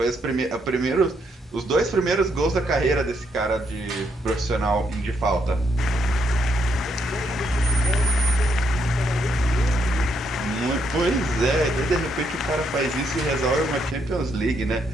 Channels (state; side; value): normal; both; correlation 0.76